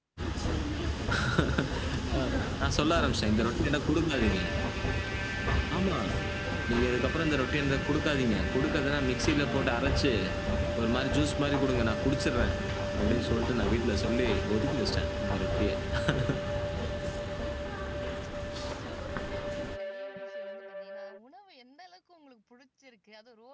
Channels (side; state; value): both; identical; correlation 1.00